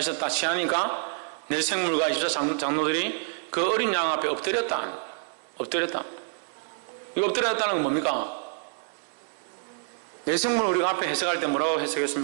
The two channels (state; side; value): silent; left; digital silence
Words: 취하니까 내 생물과 24 장로들이 그 어린 양 앞에 엎드렸다. 이거 엎드렸다는 건 뭡니까? 내생물 우리가 앞에 해석할 때 뭐라고